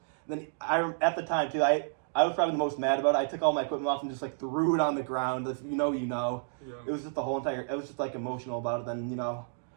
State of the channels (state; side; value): silent; left; digital silence